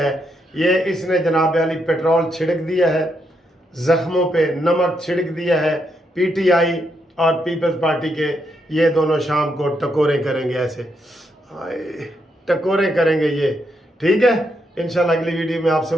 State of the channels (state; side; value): normal; both; correlation 0.79